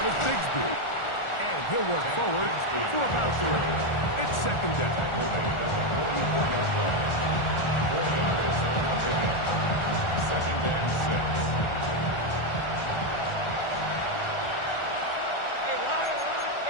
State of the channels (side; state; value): right; late; 1.4 ms